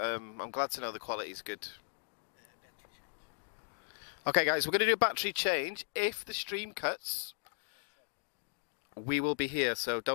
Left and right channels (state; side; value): silent; right; digital silence